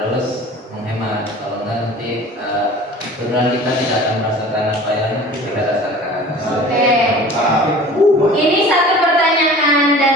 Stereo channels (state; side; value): normal; both; correlation 0.42